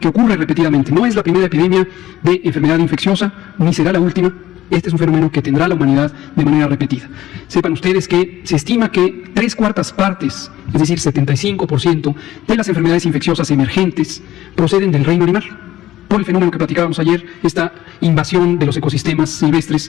ocurre repetidamente. No es la primera epidemia de enfermedad infecciosa, ni será la última. Este es un fenómeno que tendrá la humanidad de manera repetida. Sepan ustedes que se estima que 3/4 partes, es decir, 75% de las enfermedades infecciosas emergentes proceden del reino animal. por el fenómeno que platicábamos ayer, esta invasión de los ecosistemas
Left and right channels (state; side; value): quieter; right; 14.4 dB